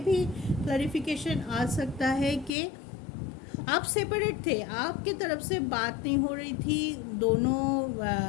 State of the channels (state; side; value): drops out; right; at 2.5 s